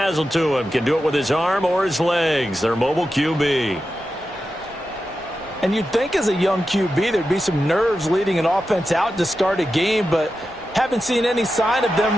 to him. Can do it with his arm or his legs. Their mobile QB. And you'd think as a young QB there'd be some nerves leading an offense out to start a game, but haven't seen any sign of them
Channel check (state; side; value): normal; both; correlation 0.91